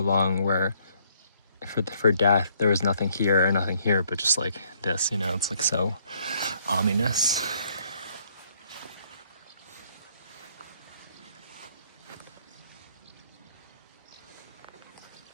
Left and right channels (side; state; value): both; inverted; correlation -0.67